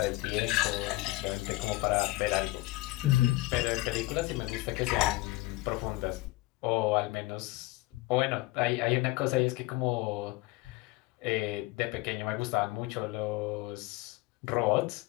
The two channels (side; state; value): right; quieter; 20.4 dB